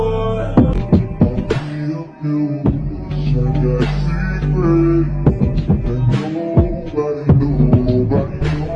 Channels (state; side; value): identical; both; correlation 1.00